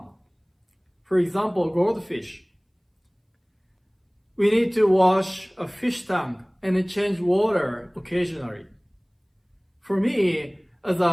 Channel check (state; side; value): identical; both; correlation 1.00